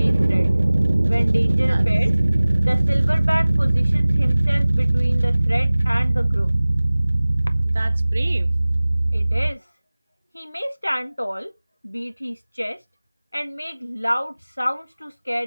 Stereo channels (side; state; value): both; inverted; correlation -0.99